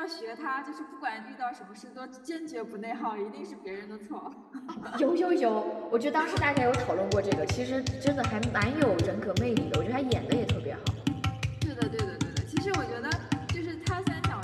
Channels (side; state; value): both; identical; correlation 1.00